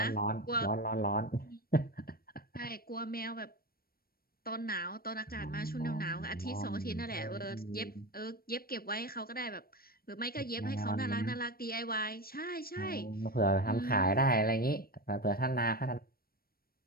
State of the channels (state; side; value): late; right; 0.44 ms